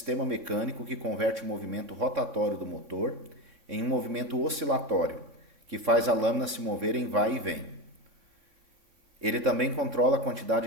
mecânico que converte o movimento rotatório do motor em um movimento oscilatório, que faz a lâmina se mover em vai e vem. Ele também controla a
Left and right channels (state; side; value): late; left; 3.6 ms